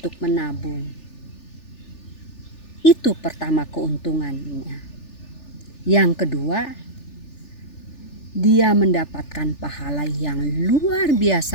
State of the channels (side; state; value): right; late; 3.4 ms